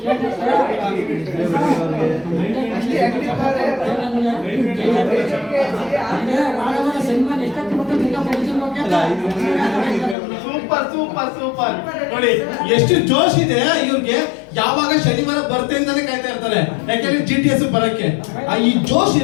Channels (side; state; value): right; drops out; at 10.2 s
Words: Super super super. ನೋಡಿ ಎಷ್ಟು ಜೋಶ್ ಇದೆ ಇವ್ರಿಗೆ. ಯಾವಾಗ ಶನಿವಾರ ಬರ್ತೆಂದಾನೆ ಕಾಯ್ತಾ ಇರ್ತಾರೆ, ಯಾಕೆಂದ್ರೆ GTS ಬರಕ್ಕೆ. ಈ ಜೋಶ್